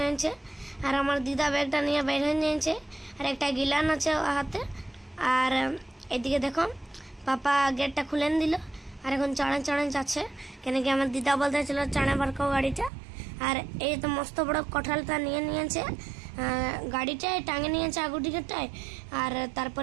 और हमार दीदा बैगटा নিয়ে বের হয়ে যাচ্ছে और একটা গিলান আছে হাতে और এদিকে দেখো पापा गेटटा खुले दिल और এখন চড়ে চড়ে যাচ্ছে কেন কি আমার दीदा বলতেছিল চড়ে বারকো গাড়িটা और ये तो मस्त बड़ा कठालटा निये नियेछे गाड़ीटाय टांगे नियेछे आगु टिकेटटाय और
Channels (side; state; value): left; drops out; at 12.9 s